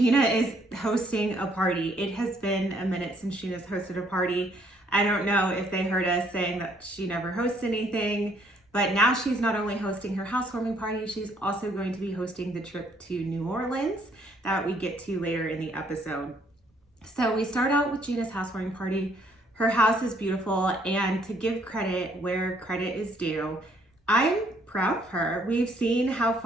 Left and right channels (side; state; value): both; normal; correlation 0.66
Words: is hosting a party. It has been a minute since Gina's hosted a party. I don't know if they heard us saying that she never hosts anything, but now she's not only hosting her housewarming party, she's also going to be hosting the trip to New Orleans that we get to later in the episode. So we start out with Gina's housewarming party. Her house is beautiful, and to give credit where credit is due, I'm proud of her. We've seen how